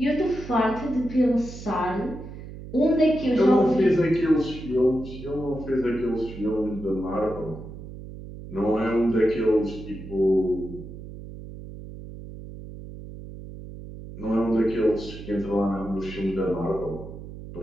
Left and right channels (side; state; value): right; noise; hum, 13 dB below the sound